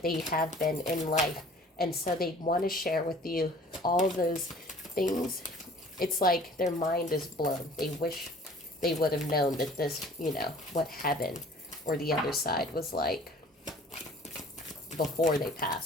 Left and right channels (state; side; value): normal; both; correlation 0.50